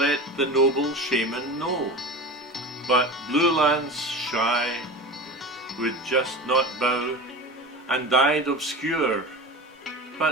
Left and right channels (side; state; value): both; normal; correlation 0.30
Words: the noble shaman know. But Blue Lance, shy, would just not bow, and died obscure,